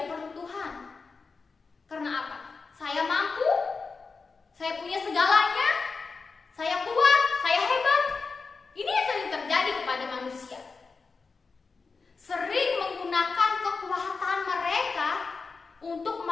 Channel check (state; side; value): quieter; right; 4.5 dB